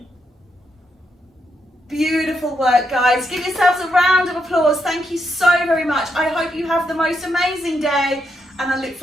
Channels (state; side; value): normal; both; correlation 0.80